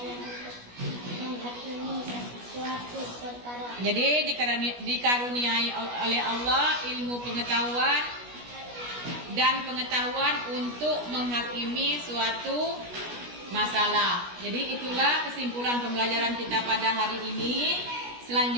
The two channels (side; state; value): left; late; 17 ms